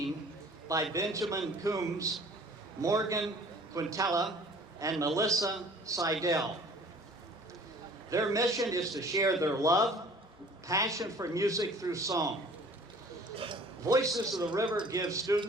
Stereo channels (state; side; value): normal; both; correlation 0.50